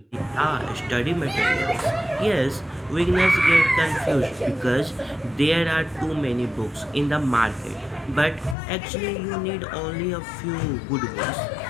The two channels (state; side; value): drops out; right; at 8.6 s